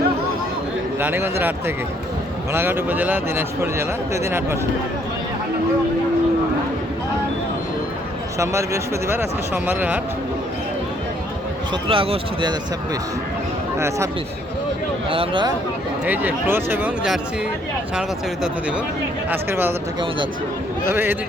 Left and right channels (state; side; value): normal; both; correlation 0.66